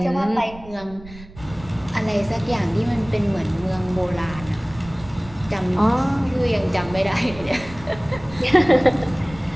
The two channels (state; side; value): noise; right; rumble, 17 dB below the sound